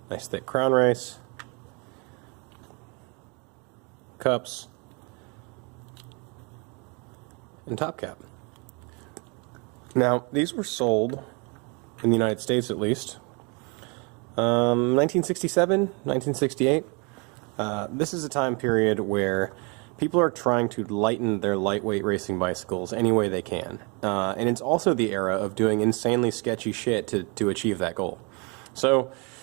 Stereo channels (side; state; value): left; quieter; 32.0 dB